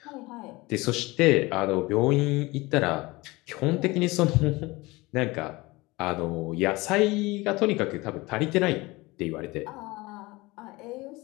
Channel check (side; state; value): right; quieter; 22.1 dB